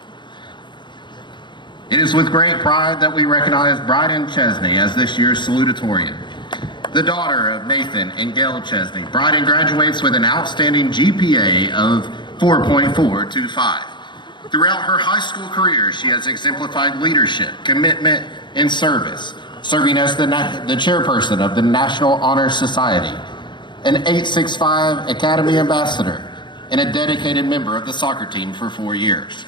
It is with great pride that we recognize Bryden Chesney as this year's salutatorian. The daughter of Nathan and Gail Chesney, Bryden graduates with an outstanding GPA of 4.425. Throughout her high school career, she has exemplified leadership, commitment, and service, serving as the chairperson of the National Honor Society, an 865 Academy Ambassador, and a dedicated member of the soccer team for 4 years.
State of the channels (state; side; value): late; right; 0.22 ms